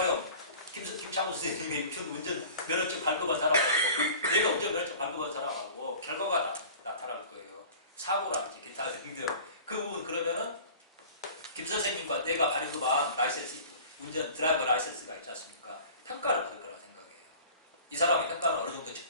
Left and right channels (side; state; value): both; inverted; correlation -0.43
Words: 김창호 선생님이 운전면허증 발급한 사람하고 내가 운전면허증 발급한 사람하고 결과가 나타날 거예요. 사고라든지 기타 등등. 그 부분 그러면은 김 선생님과 내가 발급한 라이센스, 드라이버 라이센스가 있지 않습니까? 평가를 받을 거라고 생각해요. 이 사람의 평가는 어느 정도